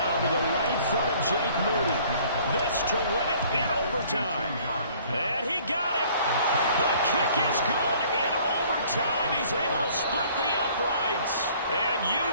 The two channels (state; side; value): inverted; both; correlation -0.56